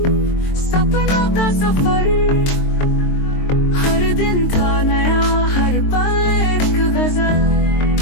सपनों का सफर, हर दिन था नया हर पल एक गजल।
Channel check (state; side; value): late; right; 23 ms